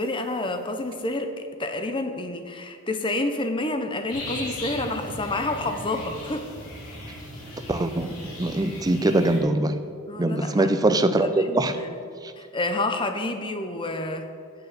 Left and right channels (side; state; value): both; normal; correlation 0.51